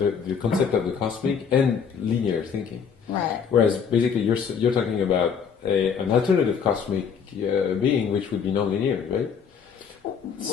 concept of the cosmic, and linear thinking. Right. Whereas basically you're talking about an alternative cosmic being, which would be non-linear, right?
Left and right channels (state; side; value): quieter; right; 6.8 dB